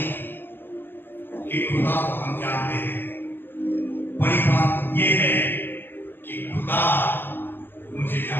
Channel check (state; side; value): late; right; 0.097 ms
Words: कि खुदा को हम जानते हैं, बड़ी बात ये है कि खुदा मुझे